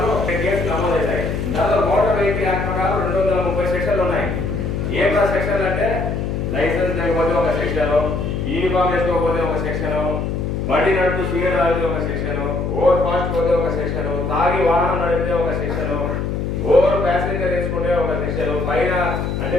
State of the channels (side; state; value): left; noise; hum, 2 dB below the sound